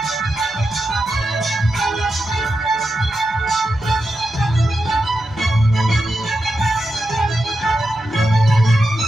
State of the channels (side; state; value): both; normal; correlation 0.88